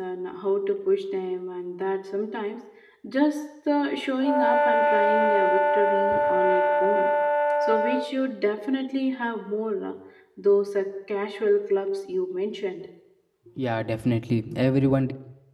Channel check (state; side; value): identical; both; correlation 1.00